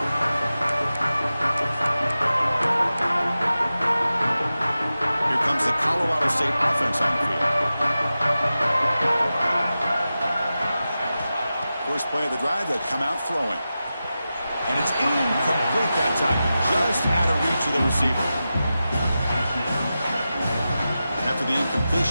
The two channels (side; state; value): both; inverted; correlation -0.93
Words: Here comes the Colorado State offense on the field. First play of the drive, they'll come out throwing. And it's incomplete that time, just out of reach of the receiver. After the